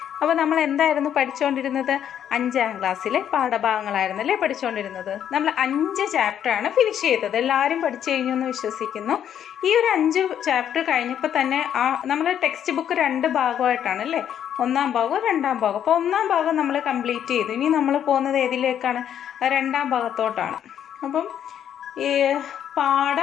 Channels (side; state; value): right; quieter; 9.6 dB